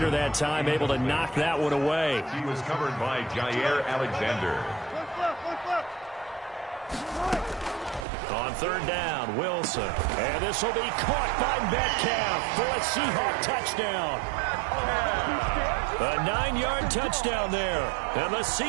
that time able to knock that one away. He was covered by Jair Alexander. On 3rd down, Wilson. And this will be caught by Metcalf for a Seahawk touchdown. A 9-yard touchdown there. And the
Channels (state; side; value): drops out; left; at 8.1 s